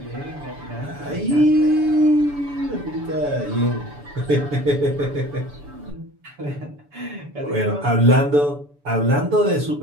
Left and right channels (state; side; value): late; left; 7.0 ms